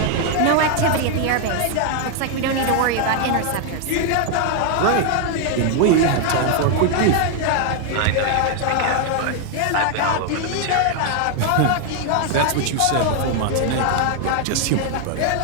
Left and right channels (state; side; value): different; both; correlation 0.00